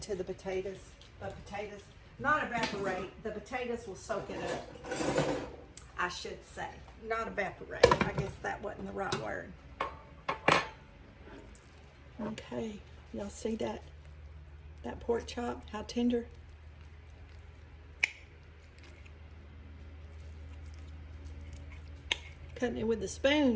the potatoes. Not evaporate, the potatoes will soak it up, I should say. Not evaporate, I guess that wasn't the right word. Okay, y'all see that pork chop, how tender? Cutting it with a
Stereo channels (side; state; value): both; identical; correlation 1.00